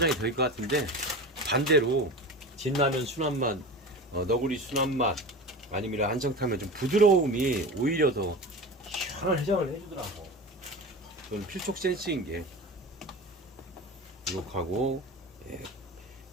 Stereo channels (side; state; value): both; normal; correlation 0.31